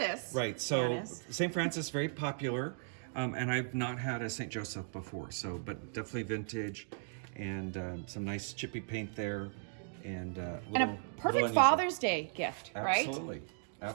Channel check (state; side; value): silent; left; digital silence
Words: Right, so Janice. St. Francis, very popular, and I've not had a St. Joseph before, so but definitely vintage, and some nice chippy paint there, and a perfect Father's Day gift, right? Absolutely,